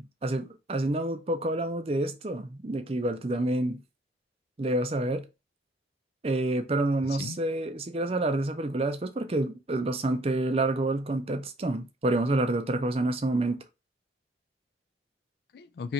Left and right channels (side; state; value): both; normal; correlation 0.60